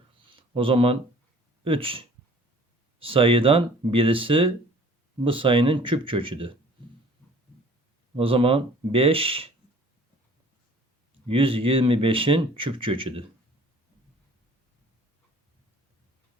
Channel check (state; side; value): normal; both; correlation 0.51